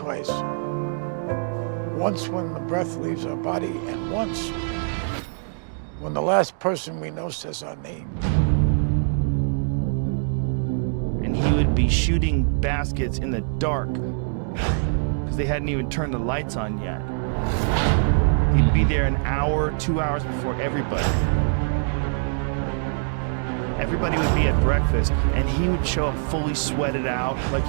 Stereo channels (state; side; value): silent; left; digital silence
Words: Once when the breath leaves our body, and once when the last person we know says our name. And he would be shooting baskets in the dark because they hadn't even turned the lights on yet. He'd be there an hour, 2 hours before everybody. Everybody would be at breakfast, and he would show up fully sweated out, like